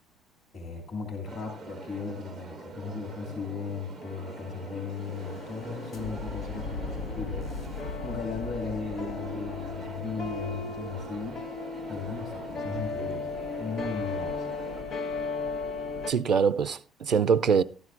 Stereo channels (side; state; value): both; normal; correlation 0.49